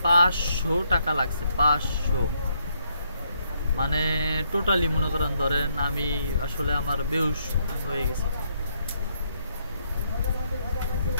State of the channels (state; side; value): inverted; both; correlation -0.75